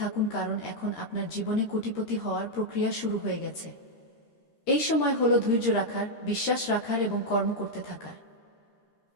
কারণ এখন আপনার জীবনে কোটিপতি হওয়ার প্রক্রিয়া শুরু হয়ে গেছে। এই সময় হলো ধৈর্য রাখার, বিশ্বাস রাখার এবং কর্ম করতে থাকার।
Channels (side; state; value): right; late; 13 ms